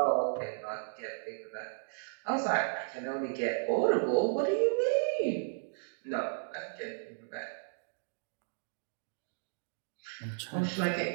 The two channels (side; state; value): left; silent; digital silence